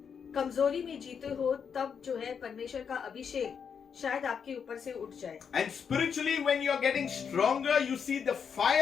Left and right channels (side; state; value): right; quieter; 6.8 dB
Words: कमजोरी में जीते हो, तब जो है परमेश्वर का अभिषेक शायद आपके ऊपर से उठ जाए. And spiritually, when you are getting stronger, you see the